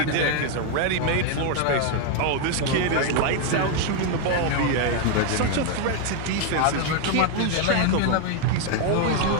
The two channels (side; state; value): both; different; correlation 0.01